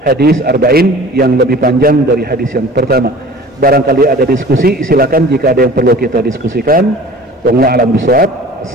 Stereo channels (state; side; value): normal; both; correlation 0.44